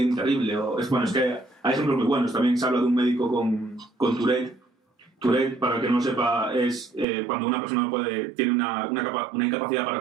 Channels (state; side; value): drops out; left; at 7.1 s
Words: terrible. Es que hay ejemplos muy buenos. También se habla de un médico con Tourette. Tourette, para el que no lo sepa, es cuando una persona tiene una incapacidad para